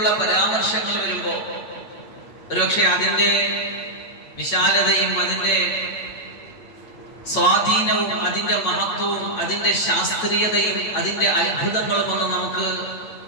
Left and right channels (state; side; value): late; right; 9.0 ms